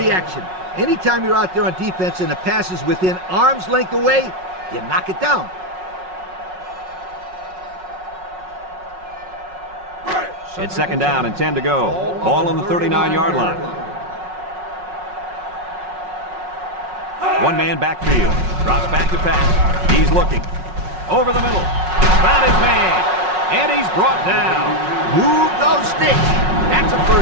Anytime you're out there on defense and the pass is within arm's length away, you knock it down. It's second down and 10 to go. Ball on the 39-yard line. One man backfield. Drops back to pass. He's looking. Over the middle. Found his man. And he's brought down. Move those sticks. That's a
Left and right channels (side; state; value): left; late; 5.4 ms